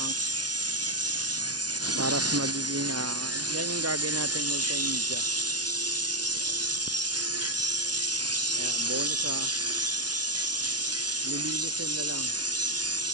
para sa magiging yan yung gagawin natin multimedia. Kaya bonus lilinisin na lang.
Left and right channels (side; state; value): left; late; 0.69 ms